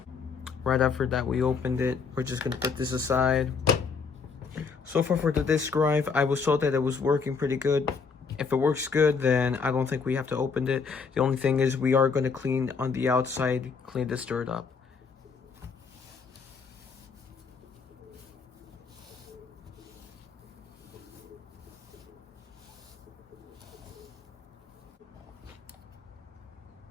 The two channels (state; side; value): quieter; right; 5.3 dB